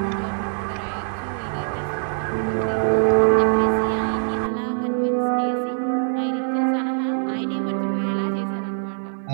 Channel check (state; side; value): silent; left; digital silence